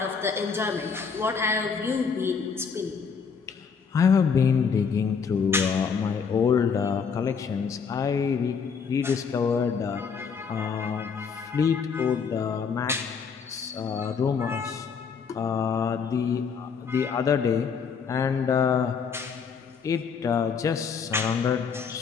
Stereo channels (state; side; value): quieter; right; 6.0 dB